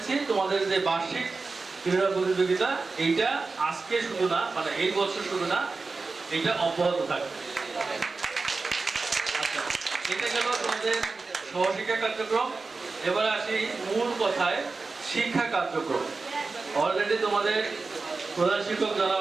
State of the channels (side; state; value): left; quieter; 4.0 dB